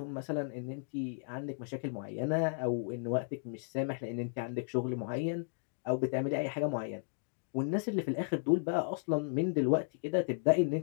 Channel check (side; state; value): right; silent; digital silence